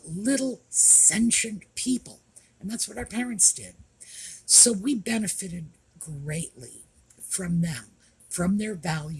little sentient people. And that's what our parents did. So we benefited greatly from them, from their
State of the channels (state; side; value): identical; both; correlation 1.00